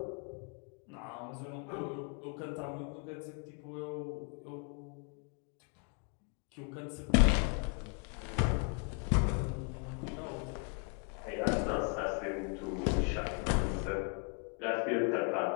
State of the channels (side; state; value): right; quieter; 38.3 dB